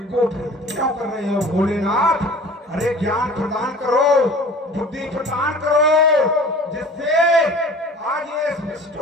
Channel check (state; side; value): normal; both; correlation 0.44